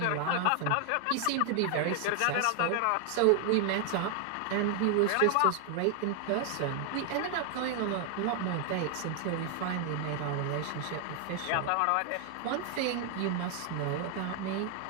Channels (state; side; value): different; both; correlation 0.00